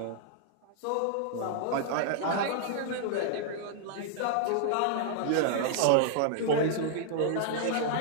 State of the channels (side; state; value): both; different; correlation -0.01